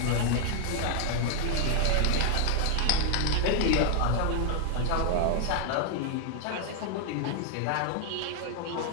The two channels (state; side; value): different; both; correlation 0.00